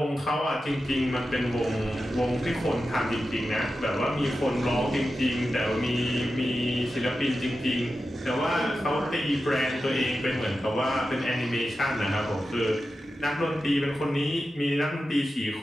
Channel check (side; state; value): both; normal; correlation 0.91